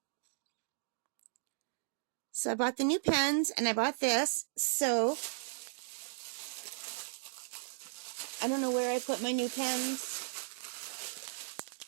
So I bought the new pens and I bought this. So I don't know where I put my new pens.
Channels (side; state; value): left; silent; digital silence